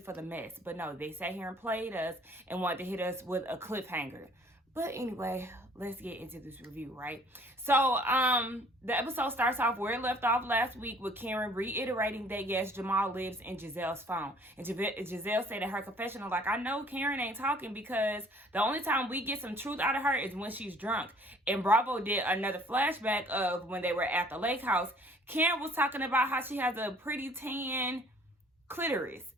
the mess, but no, they sat here and played us and wanted to hit us with a cliffhanger. But anyway, let's get into this review, right? So, the episode starts off where it left off last week with Karen reiterating that, yes, Jamal lives in Gizelle's phone. And Gizelle said in her confessional, like, I know Karen ain't talking because the only time we get some truth out of her is when she's drunk. And Bravo did another flashback of when they were at the lake house. Karen was talking about how she has a pretty tan clitoris.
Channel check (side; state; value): both; normal; correlation 0.56